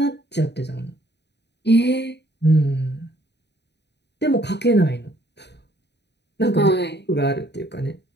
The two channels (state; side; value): late; right; 0.50 ms